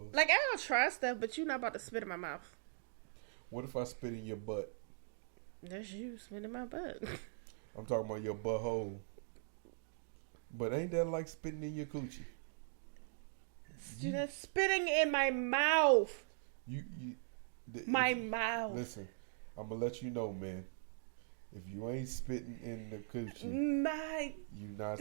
Like, I don't try stuff, but you're not about to spit in my mouth. What if I spit in your butt? That's you spit in my butt. I'm talking about your butthole. But ain't that like spitting in your coochie? Dude, that's spitting in my mouth. My mouth. Listen, I'm gonna let you know, man. If you ain't spitting in the coochie,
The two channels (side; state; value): left; silent; digital silence